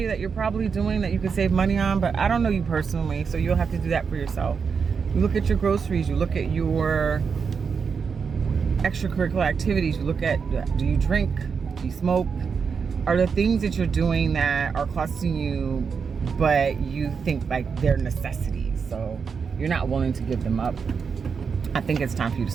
that you're probably doing that you could save money on, but I don't know you personally, so you'll have to do that for yourself. You look at your groceries, you look at your extracurricular activities, you look at, do you drink, do you smoke? Are there things that you're doing that are costing you, but you think like they're necessities, so you're not willing to give them up? I think it's time for you to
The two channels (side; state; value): left; quieter; 5.9 dB